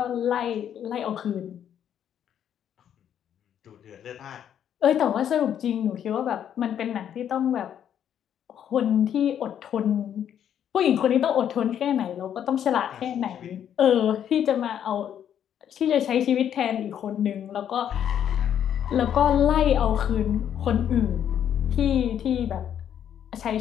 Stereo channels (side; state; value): right; quieter; 9.5 dB